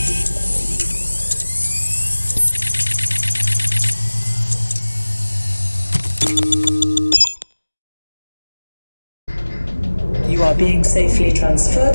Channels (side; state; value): both; inverted; correlation -1.00